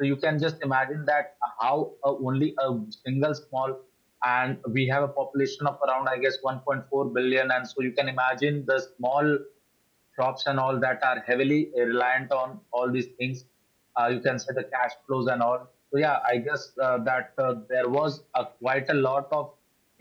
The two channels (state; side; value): identical; both; correlation 1.00